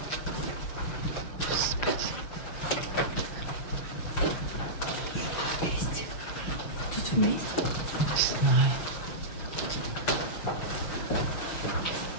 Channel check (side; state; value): right; late; 6.3 ms